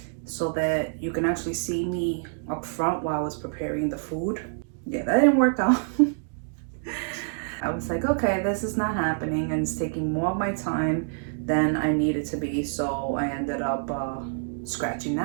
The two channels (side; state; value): left; silent; digital silence